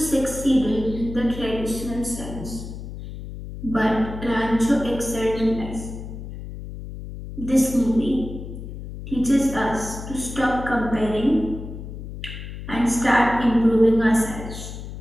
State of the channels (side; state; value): left; noise; hum, 10 dB below the sound